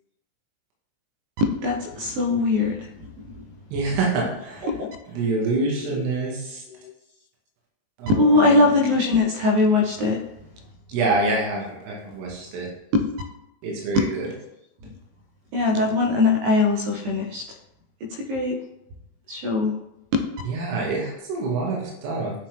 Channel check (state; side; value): late; left; 19 ms